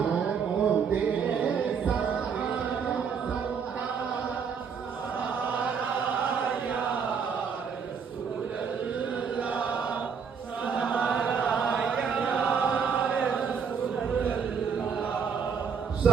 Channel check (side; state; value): left; quieter; 6.5 dB